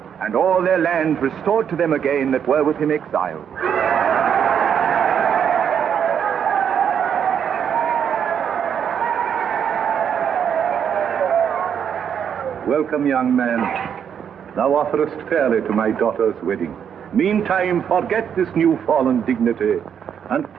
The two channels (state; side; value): quieter; left; 8.2 dB